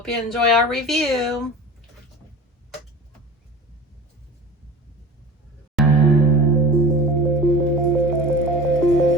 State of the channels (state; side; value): normal; both; correlation 0.36